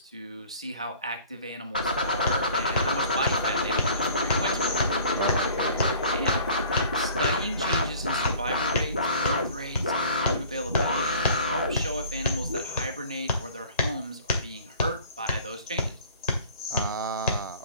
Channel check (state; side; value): inverted; both; correlation -0.50